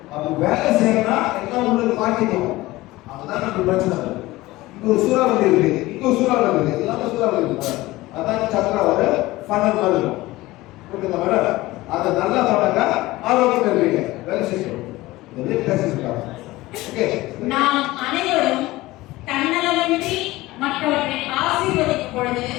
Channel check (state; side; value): quieter; right; 18.8 dB